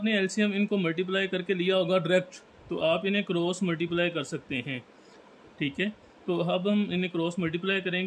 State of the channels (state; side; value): identical; both; correlation 1.00